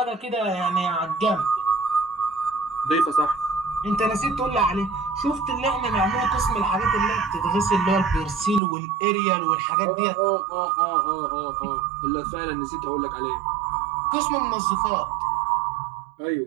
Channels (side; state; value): left; drops out; at 8.6 s